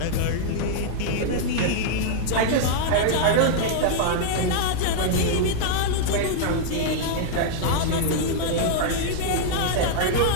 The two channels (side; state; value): both; different; correlation -0.01